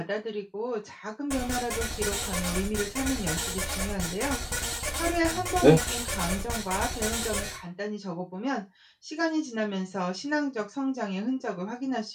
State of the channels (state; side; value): identical; both; correlation 1.00